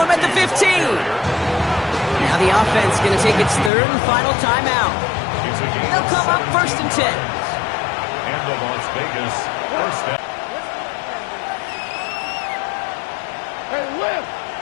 at the 15. Now the offense going to take its third and final timeout. They'll come up first and 10. And the Las Vegas first down. Hey, lift!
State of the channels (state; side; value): drops out; right; at 3.7 s